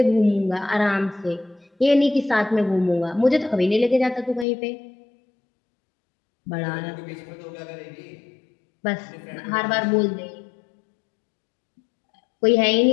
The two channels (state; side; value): drops out; right; at 4.5 s